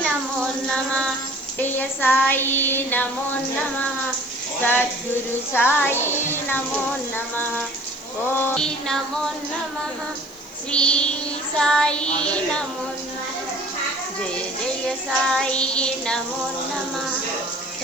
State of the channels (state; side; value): noise; left; hiss, 23 dB below the sound